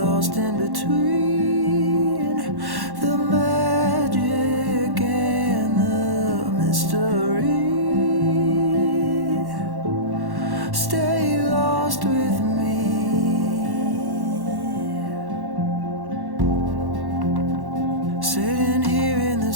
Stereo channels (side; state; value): left; late; 1.1 ms